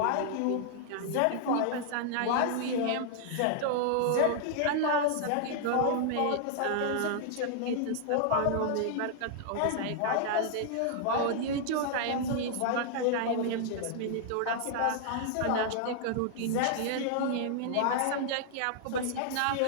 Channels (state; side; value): different; both; correlation -0.01